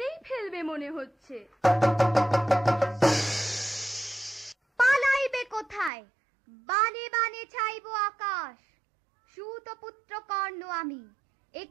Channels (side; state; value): left; drops out; at 5.9 s